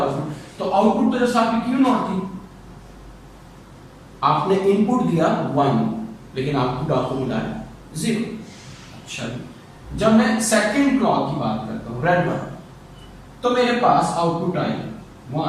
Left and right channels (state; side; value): identical; both; correlation 1.00